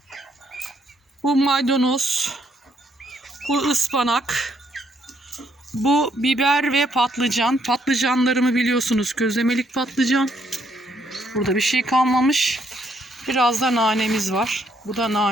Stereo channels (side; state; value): both; normal; correlation 0.72